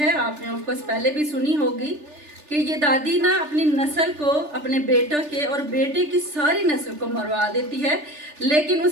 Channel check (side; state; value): left; late; 3.4 ms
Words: आपने ऑफकोर्स पहले भी सुनी होगी कि ये दादी ना अपनी नस्ल को, अपने बेटों के और बेटे की सारी नस्ल को मरवा देती है, लेकिन